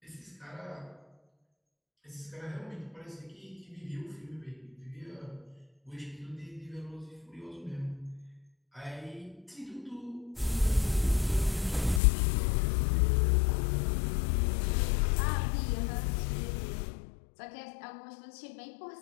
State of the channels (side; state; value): right; drops out; at 12.0 s